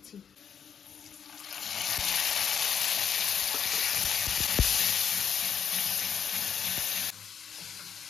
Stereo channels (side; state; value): right; quieter; 7.6 dB